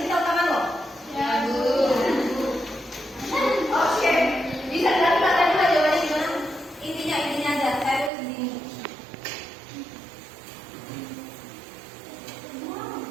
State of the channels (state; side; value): drops out; left; at 8.1 s